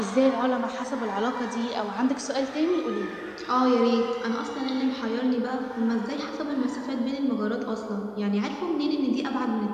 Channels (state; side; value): identical; both; correlation 1.00